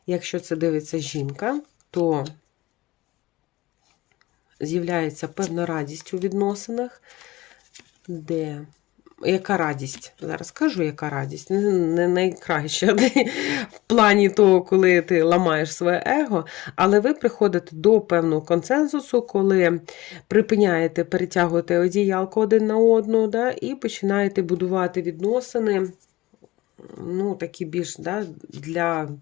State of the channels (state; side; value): quieter; right; 18.8 dB